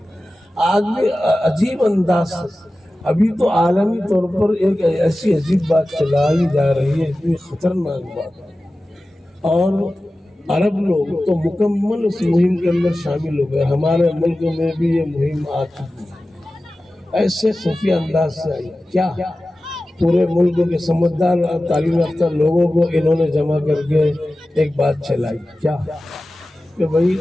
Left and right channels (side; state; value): both; normal; correlation 0.95